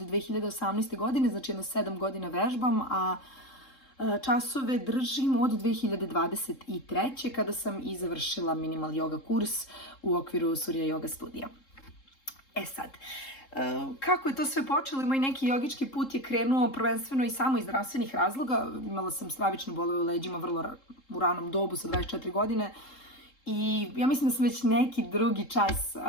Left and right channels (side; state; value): right; late; 3.7 ms